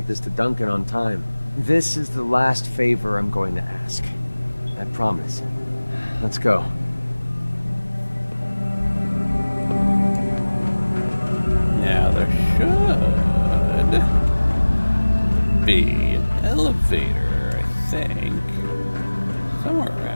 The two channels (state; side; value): inverted; both; correlation -1.00